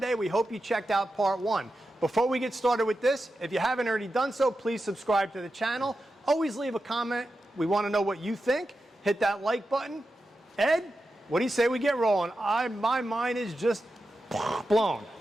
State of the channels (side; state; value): both; normal; correlation 0.90